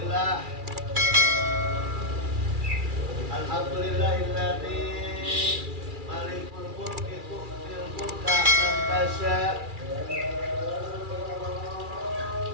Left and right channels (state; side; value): late; left; 2.4 ms